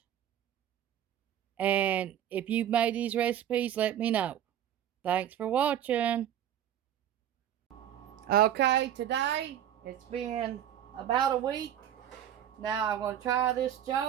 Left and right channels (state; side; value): quieter; left; 10.6 dB